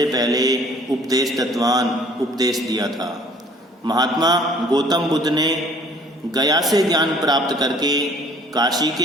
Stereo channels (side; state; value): both; normal; correlation 0.54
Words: पहले उपदेश दत्तवान, उपदेश दिया था। महात्मा गौतम बुद्ध ने गया से ज्ञान प्राप्त करके काशी